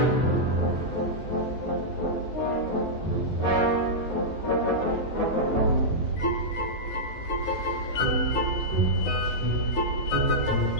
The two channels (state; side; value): late; right; 9.6 ms